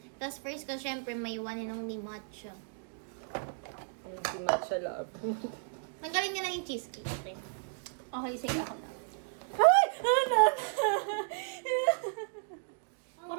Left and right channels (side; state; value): left; silent; digital silence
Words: Tapos first ko, syempre, may one inong ni matcha. Hindi matcha love. Tanggalin niya lang yung cheesecake. Okay, sige ako na. Ay! Ano?